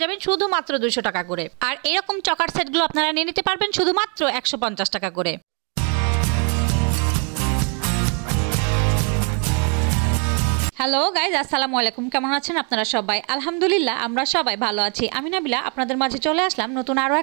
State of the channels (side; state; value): left; quieter; 36.8 dB